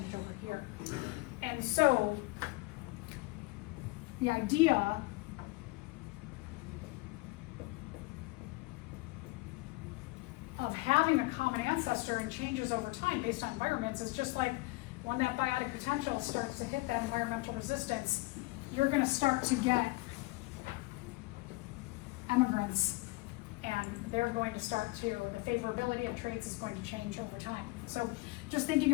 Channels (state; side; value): quieter; right; 23.1 dB